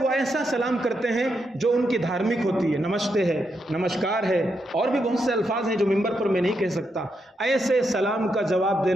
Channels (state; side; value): normal; both; correlation 0.82